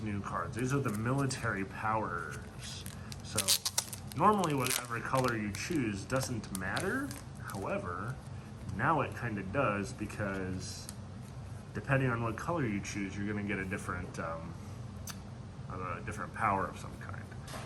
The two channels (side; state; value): both; identical; correlation 1.00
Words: new cards. These are the military powers. So, normally whatever color you choose doesn't matter. However, now it kind of does because depending on what color you choose, you're going to get a different power of some kind.